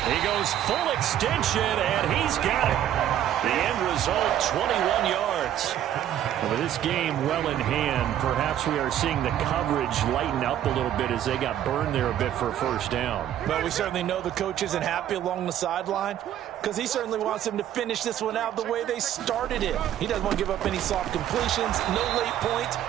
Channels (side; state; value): left; quieter; 11.2 dB